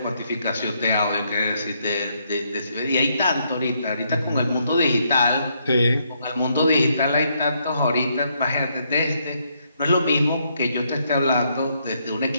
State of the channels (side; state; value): both; inverted; correlation -0.74